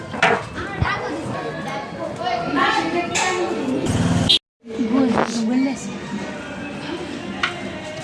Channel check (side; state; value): both; identical; correlation 1.00